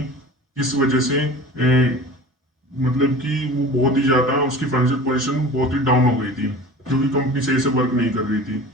किस वजह से मतलब कि वो बहुत ही ज़्यादा उसकी फाइनेंशियल पोजीशन बहुत ही डाउन हो गई थी, क्योंकि कंपनी सही से वर्क नहीं कर रही थी।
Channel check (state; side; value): normal; both; correlation 0.38